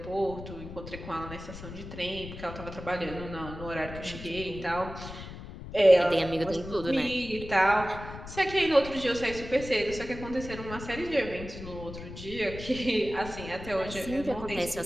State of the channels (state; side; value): noise; left; rumble, 11 dB below the sound